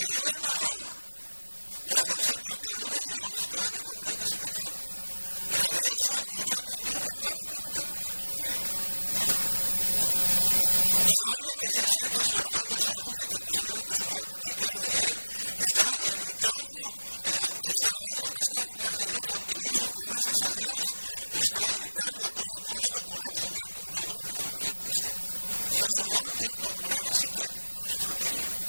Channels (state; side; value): inverted; both; correlation -1.00